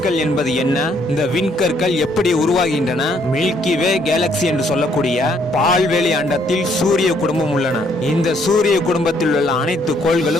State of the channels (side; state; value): both; normal; correlation 0.68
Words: என்பது என்ன, இந்த விண்கற்கள் எப்படி உருவாகின்றன, மில்கி வே கேலக்சி என்று சொல்லக்கூடிய பால்வெளி அண்டத்தில் சூரிய குடும்பம் உள்ளன. இந்த சூரிய குடும்பத்தில் உள்ள அனைத்து